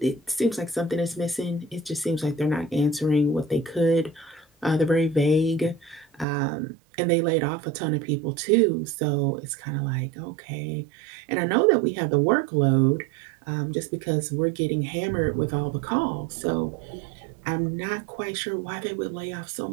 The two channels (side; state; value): left; drops out; at 6.2 s